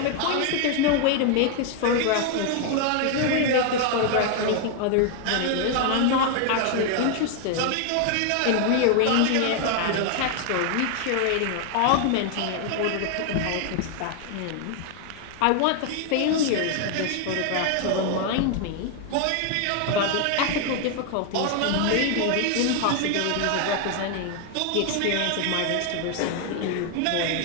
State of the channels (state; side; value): different; both; correlation 0.00